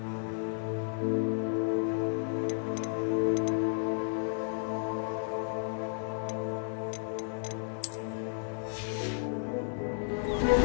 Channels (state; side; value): silent; right; digital silence